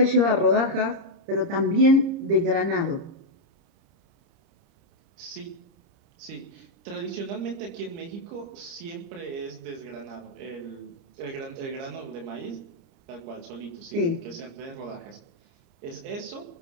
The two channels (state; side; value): late; left; 30 ms